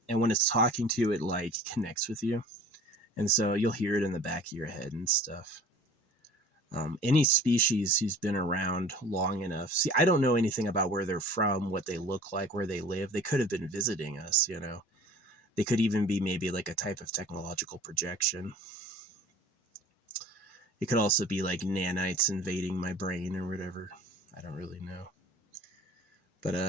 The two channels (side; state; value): both; normal; correlation 0.45